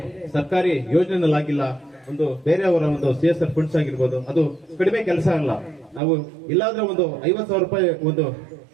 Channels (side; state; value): left; drops out; at 6.0 s